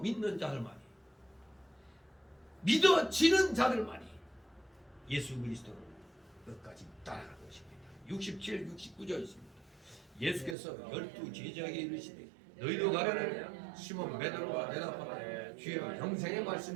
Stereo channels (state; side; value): drops out; left; at 10.6 s